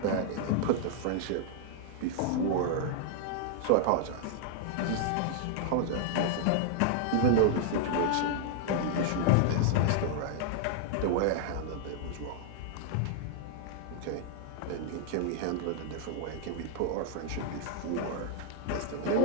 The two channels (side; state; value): both; different; correlation 0.00